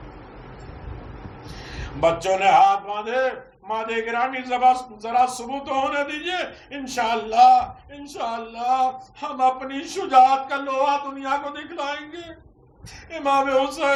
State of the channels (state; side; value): identical; both; correlation 1.00